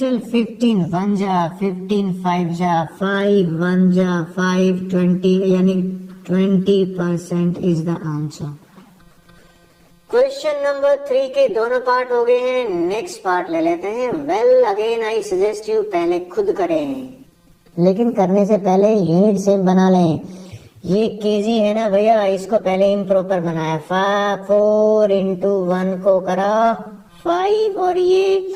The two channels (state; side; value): identical; both; correlation 1.00